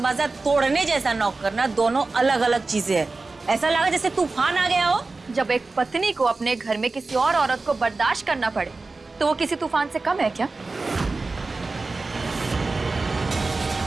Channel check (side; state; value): left; quieter; 3.6 dB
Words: तोड़ने जैसा नॉक करना दोनों अलग अलग चीजें हैं। ऐसा लगा जैसे तूफान आ गया हो। जब एक पत्नी को अपने घर में किसी और औरत को बर्दाश्त करना पड़े तो वो किसी तूफान से कम है क्या?